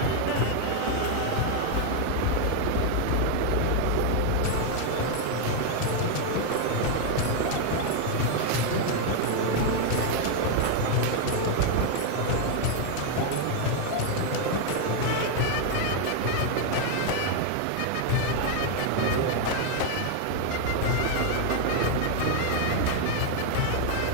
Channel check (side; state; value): both; different; correlation 0.00